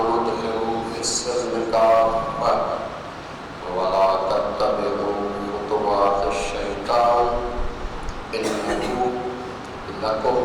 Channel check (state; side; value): identical; both; correlation 1.00